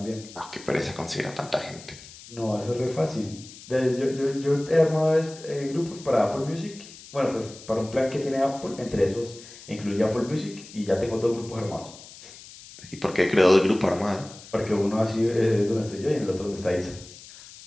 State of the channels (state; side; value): noise; left; hiss, 18 dB below the sound